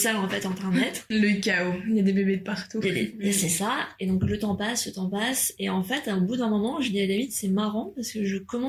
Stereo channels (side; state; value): both; identical; correlation 1.00